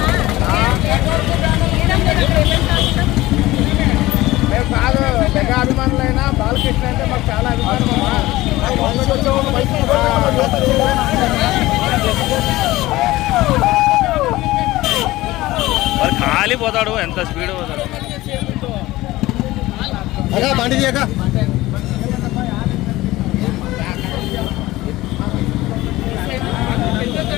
మేము కాదు మెగా అభిమానులైనా బాలకృష్ణ అంటే మాకు చాలా అభిమానం అమ్మా. మరి ఖాళీ పోతాడు, ఎంత స్పీడ్ పోతాడు. బండి చేయక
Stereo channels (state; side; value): quieter; right; 18.0 dB